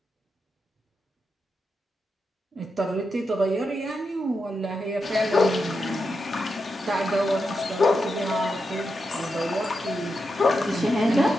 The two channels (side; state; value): both; normal; correlation 0.86